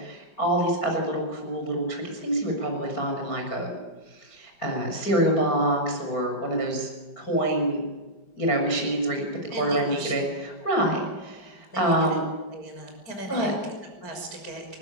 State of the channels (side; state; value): right; late; 5.0 ms